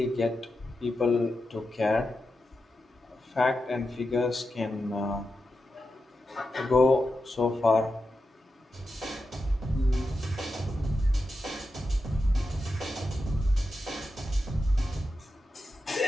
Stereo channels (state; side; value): normal; both; correlation 0.89